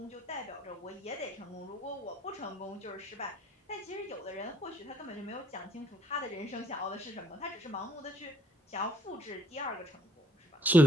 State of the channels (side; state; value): both; normal; correlation 0.65